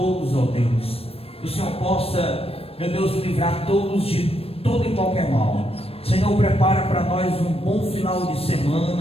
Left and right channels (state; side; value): late; right; 0.28 ms